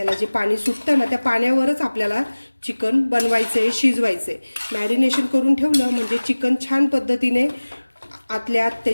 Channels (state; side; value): inverted; both; correlation -1.00